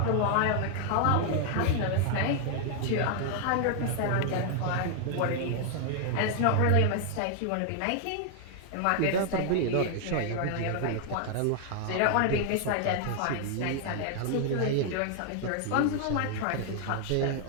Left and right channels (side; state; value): both; different; correlation 0.00